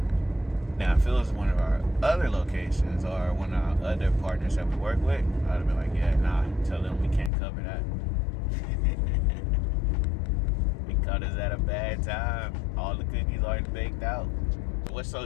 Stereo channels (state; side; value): drops out; right; at 7.3 s